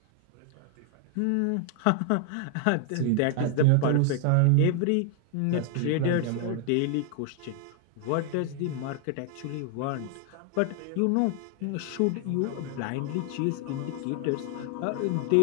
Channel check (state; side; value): different; both; correlation 0.00